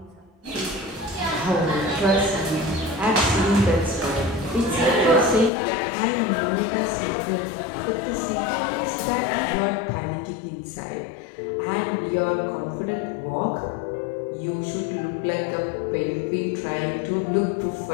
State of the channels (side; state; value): right; drops out; at 5.5 s